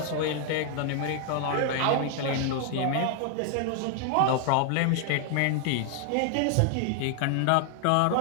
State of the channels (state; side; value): different; both; correlation 0.00